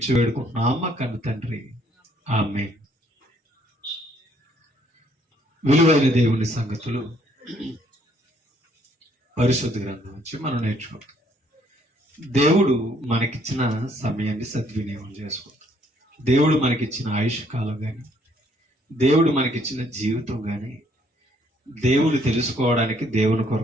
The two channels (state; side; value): normal; both; correlation 0.66